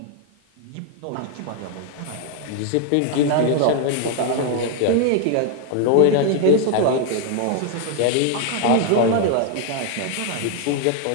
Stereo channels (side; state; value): both; different; correlation 0.00